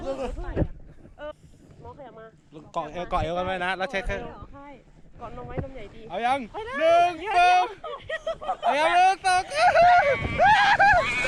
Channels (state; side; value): identical; both; correlation 1.00